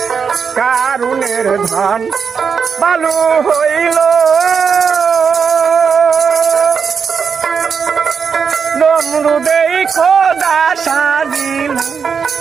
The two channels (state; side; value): quieter; left; 6.2 dB